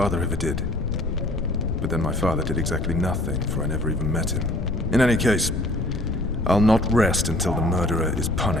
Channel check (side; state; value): left; noise; rumble, 3 dB below the sound